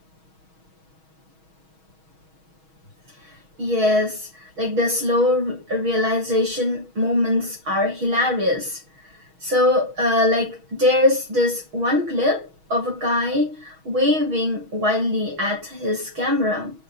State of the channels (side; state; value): left; late; 6.3 ms